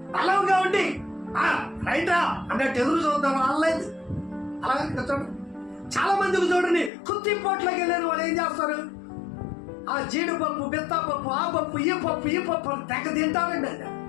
బలంగా ఉండి రైటా అన్నట్టు ఎదురు చూద్దాం. అనలేదు. అలాగే చూడండి, చాలా మందికి చూడండి, కుత్తిపోట్లోకి వెళ్ళిన వాళ్ళు ఏం చేస్తారు? జీడిపప్పు, బెత్తపప్పు, ఆ పప్పు, ఈ పప్పు తెగ తింటారండి. అది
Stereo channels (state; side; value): drops out; right; at 6.9 s